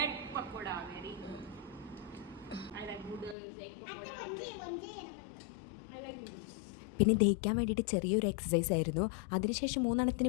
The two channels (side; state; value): right; drops out; at 3.4 s